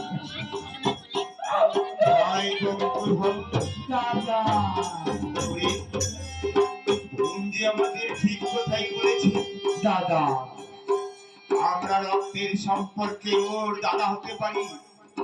ভাই বন্ধু দাদা ওরে বোন যে আমাদের ঠিক কথাই বলেছে দাদা আমরা রক্তের সম্পর্কে ওর দাদা হতে পারি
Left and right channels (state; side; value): identical; both; correlation 1.00